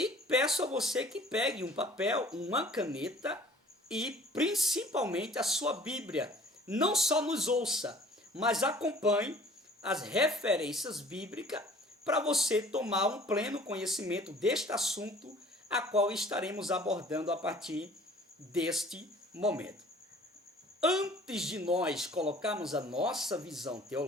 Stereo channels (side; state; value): both; normal; correlation 0.50